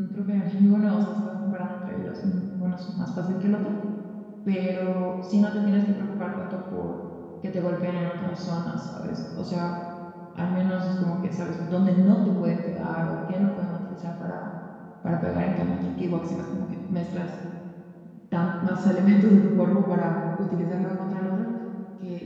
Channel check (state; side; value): identical; both; correlation 1.00